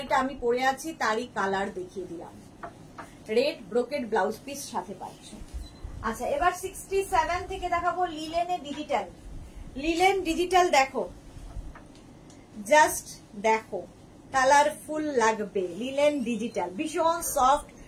আমি পরে আছি তারই কালার দেখিয়ে দিলাম, রেড ব্রোকেড ব্লাউজ পিস সাথে পাচ্ছ। আচ্ছা, এবার 67 থেকে দেখাবো লিলেনে ডিজিটাল। লিলেন ডিজিটাল দেখো, জাস্ট দেখো, কালারফুল লাগবে। লিলেন ডিজিটাল ভীষণ সফট,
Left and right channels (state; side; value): identical; both; correlation 1.00